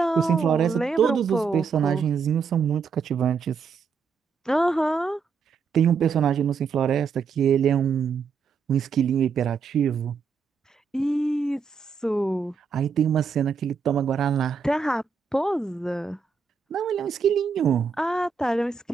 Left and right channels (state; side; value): quieter; left; 5.6 dB